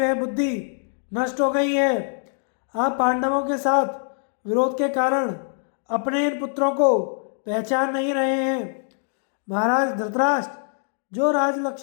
बुद्धि नष्ट हो गई है। आप पांडवों के साथ विरोध के कारण अपने इन पुत्रों को पहचान नहीं रहे हैं। महाराज धृतराष्ट्र, जो राज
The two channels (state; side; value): silent; right; digital silence